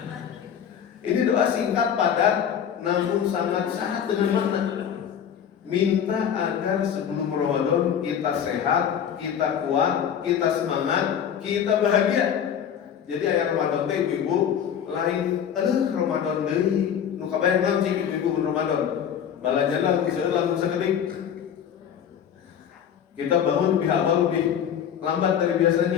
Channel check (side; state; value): right; quieter; 8.6 dB